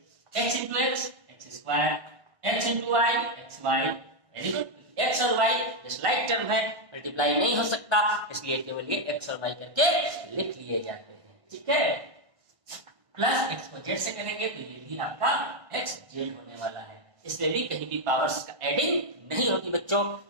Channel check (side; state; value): left; late; 1.3 ms